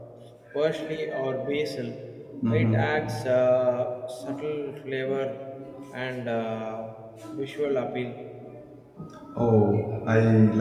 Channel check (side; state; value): both; identical; correlation 1.00